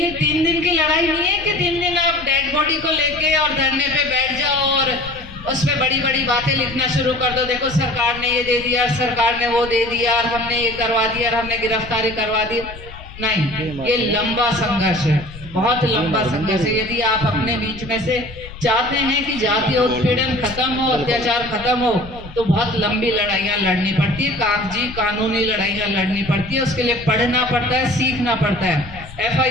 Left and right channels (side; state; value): left; noise; rumble, 15 dB below the sound